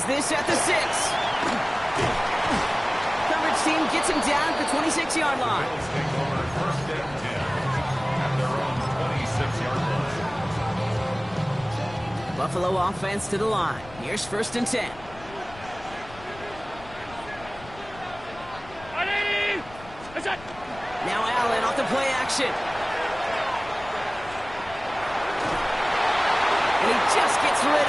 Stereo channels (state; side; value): noise; left; rumble, 19 dB below the sound